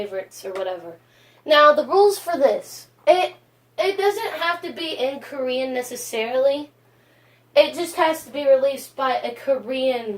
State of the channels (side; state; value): both; identical; correlation 1.00